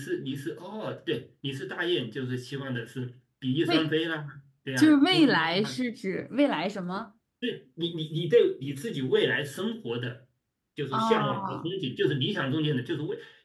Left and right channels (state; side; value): identical; both; correlation 1.00